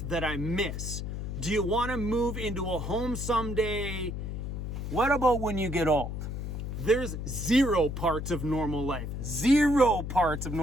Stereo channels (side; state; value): left; noise; hum, 5 dB below the sound